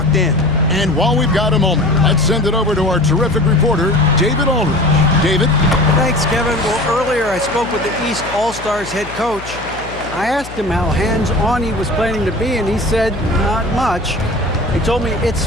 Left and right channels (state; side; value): noise; left; hum, 15 dB below the sound